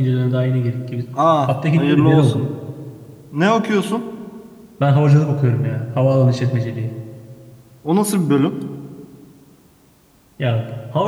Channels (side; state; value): both; identical; correlation 1.00